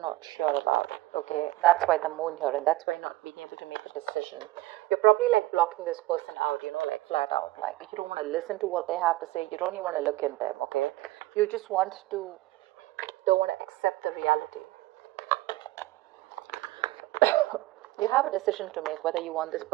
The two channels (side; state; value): left; quieter; 17.9 dB